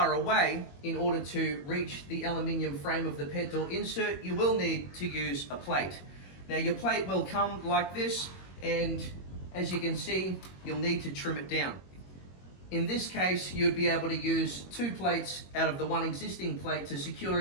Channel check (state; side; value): late; right; 21 ms